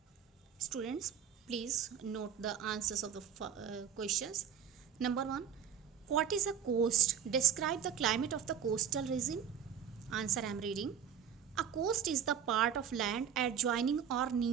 Students, please note the answers of the questions. Number 1, what is a coast? Describe the climate of the coastal region. Answer I am reading. A coast is the part of land adjoining or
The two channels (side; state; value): left; quieter; 8.2 dB